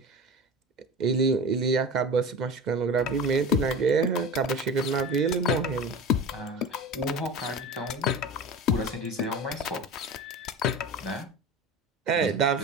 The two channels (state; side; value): normal; both; correlation 0.32